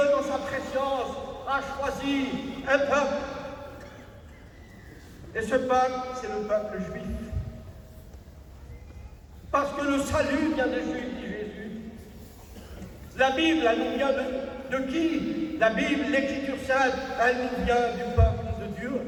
sa préscience, a choisi un peuple. Et ce peuple, c'est le peuple juif. Parce que le salut vient des Juifs, dit Jésus. La Bible, elle nous vient de qui? La Bible, l'Écriture sainte, elle nous vient du peuple de Dieu.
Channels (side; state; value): both; identical; correlation 1.00